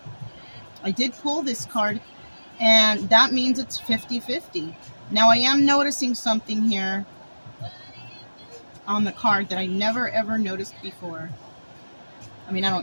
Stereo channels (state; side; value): inverted; both; correlation -1.00